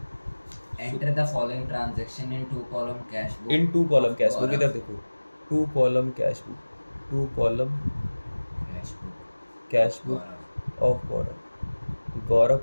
Enter the following transaction in two column cash book. In two column cash book, इधर देखो, two column cash book, two column cash book of Gaurav. Gaurav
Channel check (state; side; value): inverted; both; correlation -1.00